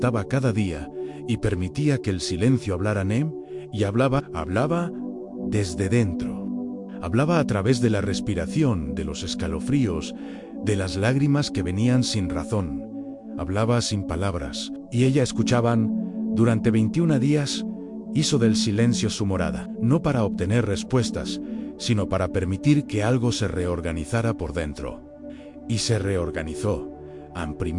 cada día y permitía que el silencio hablara en él, y hablaba desde dentro. Hablaba a través de la respiración, de los escalofríos, de las lágrimas que venían sin razón. Hablaba sin palabras, y ella escuchaban. Durante 21 días, hizo del silencio su morada, no para obtener respuestas, sino para permitir que algo se reorganizara por dentro. Y se reorganizó.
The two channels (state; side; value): identical; both; correlation 1.00